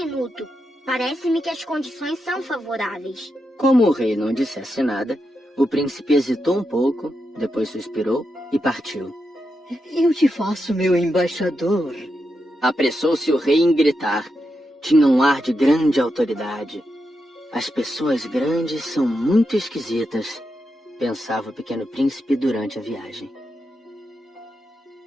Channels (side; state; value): both; normal; correlation 0.86